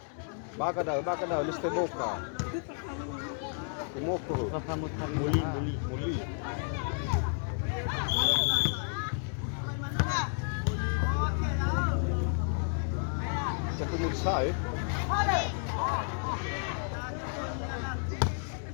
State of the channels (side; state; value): right; silent; 57 dB below the other